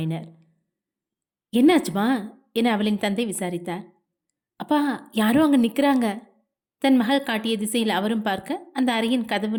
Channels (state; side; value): identical; both; correlation 1.00